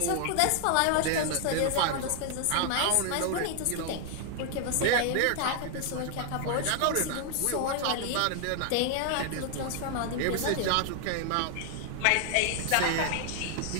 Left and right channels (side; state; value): both; different; correlation 0.00